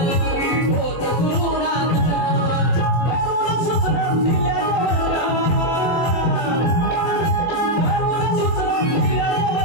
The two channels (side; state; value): right; late; 24 ms